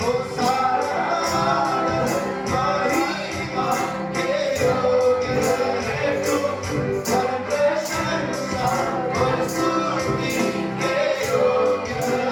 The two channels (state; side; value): identical; both; correlation 1.00